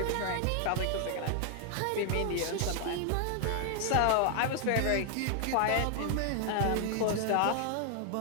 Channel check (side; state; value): both; different; correlation 0.00